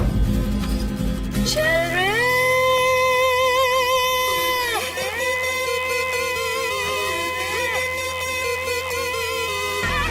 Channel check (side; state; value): both; identical; correlation 1.00